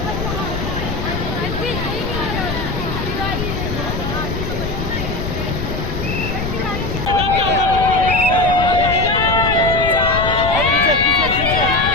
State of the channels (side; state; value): left; noise; rumble, 4 dB below the sound